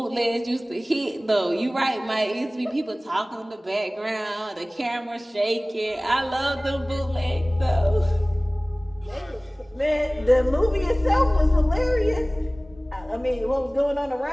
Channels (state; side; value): normal; both; correlation 0.98